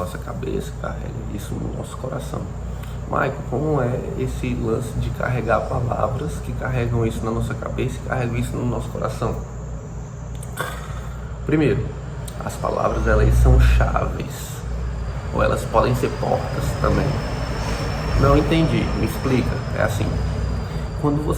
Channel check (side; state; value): both; identical; correlation 1.00